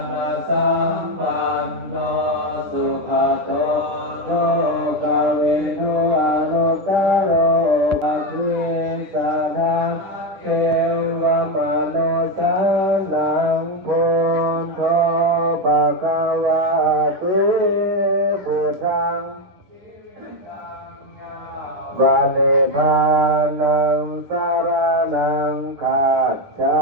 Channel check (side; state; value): left; late; 10 ms